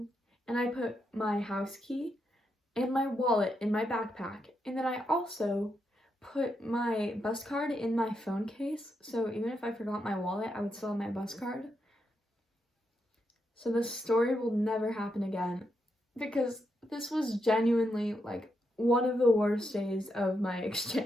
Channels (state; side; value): normal; both; correlation 0.82